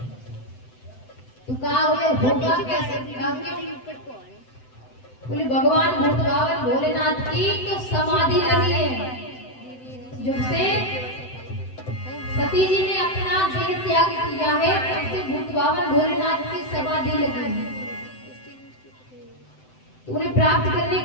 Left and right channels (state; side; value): late; right; 7.8 ms